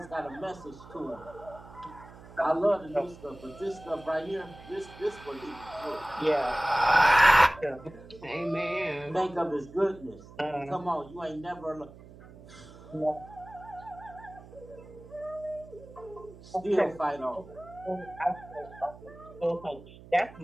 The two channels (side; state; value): right; noise; hum, 19 dB below the sound